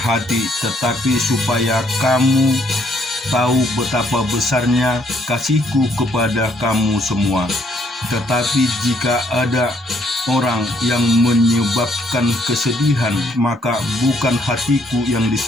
tetapi supaya kamu tahu betapa besarnya kasihku kepada kamu semua. Tetapi jika ada orang yang menyebabkan kesedihan, maka bukan hatiku yang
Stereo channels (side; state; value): both; normal; correlation 0.69